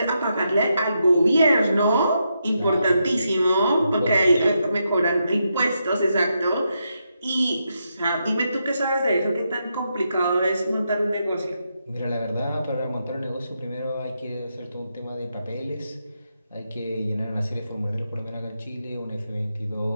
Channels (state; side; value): inverted; both; correlation -0.83